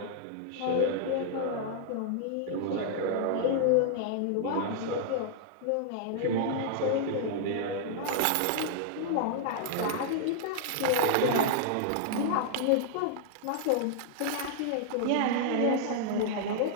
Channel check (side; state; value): both; different; correlation -0.01